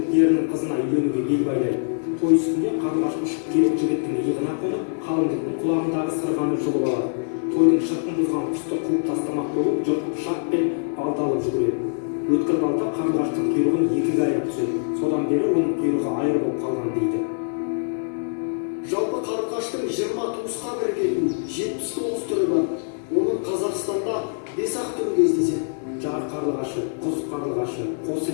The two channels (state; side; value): silent; right; digital silence